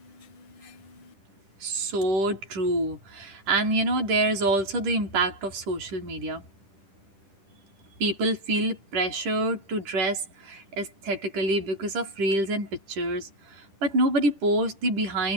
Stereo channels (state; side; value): late; left; 10 ms